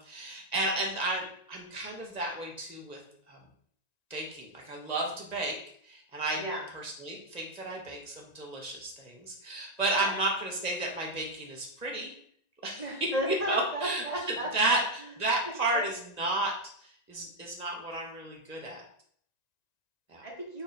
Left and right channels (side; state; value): right; late; 1.9 ms